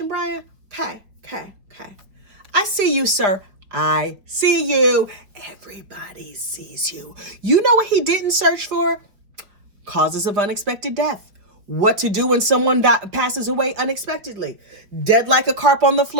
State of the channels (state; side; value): late; left; 4.6 ms